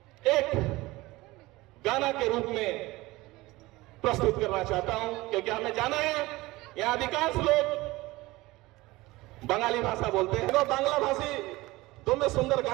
एक गाना के रूप में प्रस्तुत करना चाहता हूं, क्योंकि हमें जाना है यहां अधिकांश लोग बंगाली भाषा बोलते हैं। तो बांग्ला भाषी तुम्हें सुंदर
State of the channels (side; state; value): left; quieter; 20.0 dB